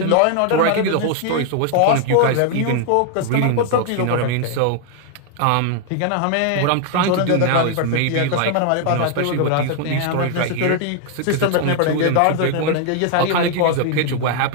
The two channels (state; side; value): different; both; correlation 0.00